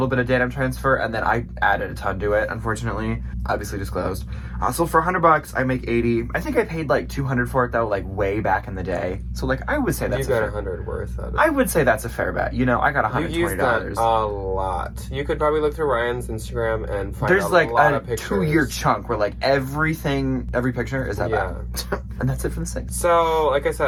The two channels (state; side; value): identical; both; correlation 1.00